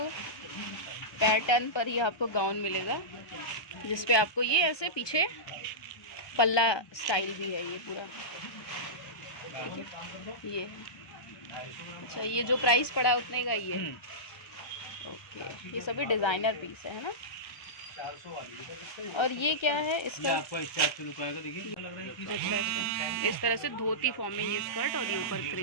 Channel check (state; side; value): late; right; 1.2 ms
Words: पैटर्न पर ही आपको गाउन मिलेगा, जिसपे आपको ये ऐसे पीछे पल्ला स्टाइल भी है, ये पूरा ये। अच्छा, ये जो प्राइस पड़ा उतने का ही है। ओके, ये सभी डिज़ाइनर पीस है ना? और ये क्या है इसका? आपको इससे लुक आएगा, देखिए। अच्छा, इस तरह से धोती फॉर्म में ये स्कर्ट, और ये ऊपर